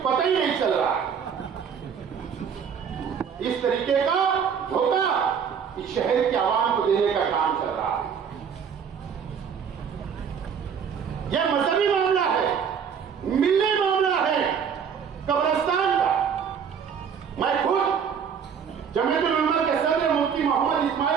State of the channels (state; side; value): quieter; left; 7.2 dB